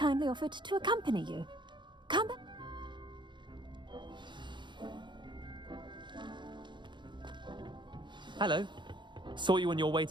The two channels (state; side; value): late; left; 0.23 ms